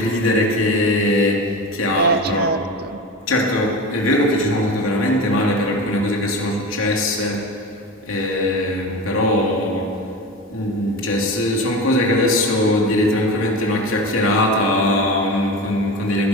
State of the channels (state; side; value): normal; both; correlation 0.28